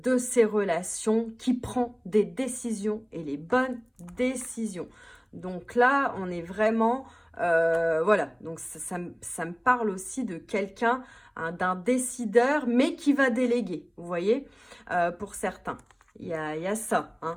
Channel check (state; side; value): identical; both; correlation 1.00